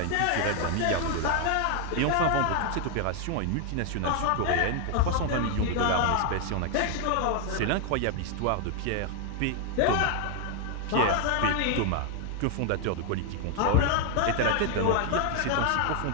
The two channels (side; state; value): both; different; correlation 0.00